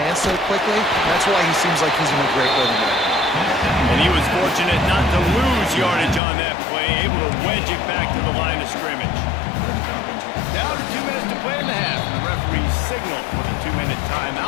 so quickly. That's why he seems like he's in a great rhythm. And he was fortunate not to lose yardage on that play, able to wedge it back to the line of scrimmage. Down to 2 minutes to play in the half. The referee signaled for the 2-minute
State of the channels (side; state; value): right; drops out; at 6.2 s